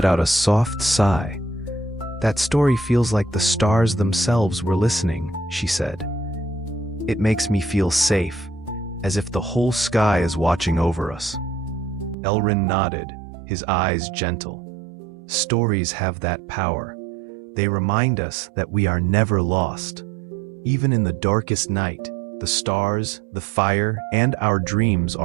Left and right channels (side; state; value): left; drops out; at 12.2 s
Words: out a soft sigh. That story feels like the stars themselves were listening, she said. It makes me feel safe, as if the whole sky is watching over us. Elrin nodded, his eyes gentle. Stories have that power. They remind us that we are never lost. Even in the darkest night, the stars, the fire, and our dreams